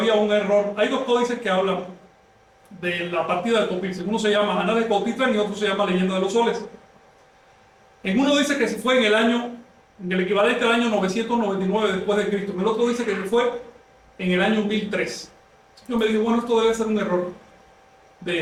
un error. Hay 2 códices que hablan de la partida de Popilsin. Uno se llama Anales de Cotitlán y otro se llama Leyenda de los Soles. En uno dice que se fue en el equivalente al año 999 después de Cristo. En el otro dice que se fue en el año 1003. Yo me digo, bueno, esto debe ser un error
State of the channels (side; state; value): both; identical; correlation 1.00